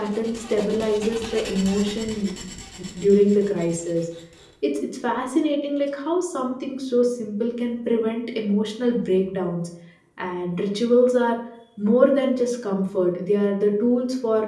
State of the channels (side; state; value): both; identical; correlation 1.00